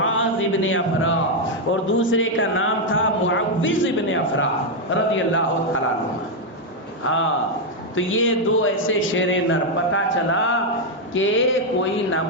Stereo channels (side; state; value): both; normal; correlation 0.01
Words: ابن افرا اور دوسرے کا نام تھا معوذ ابن افرا رضی اللہ تعالیٰ عنہ. ہاں تو یہ دو ایسے شیر نر, پتا چلا کہ کوئی